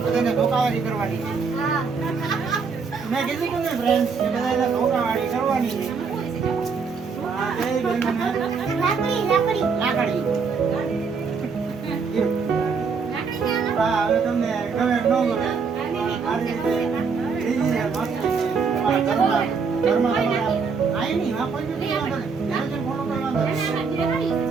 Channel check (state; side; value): quieter; left; 5.3 dB